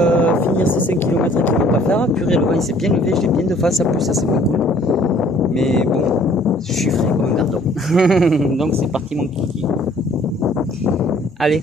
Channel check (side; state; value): both; normal; correlation 0.57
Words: finir ces 5 km qu'il ne faut pas faire. Purée, le vent il s'est bien levé, je l'ai bien de face, en plus ça c'est pas cool. Mais bon, je suis frais comme un gardon. Donc c'est parti mon kiki. Allez,